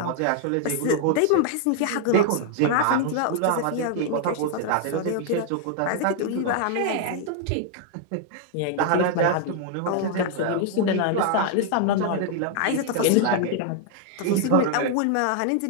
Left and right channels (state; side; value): different; both; correlation 0.00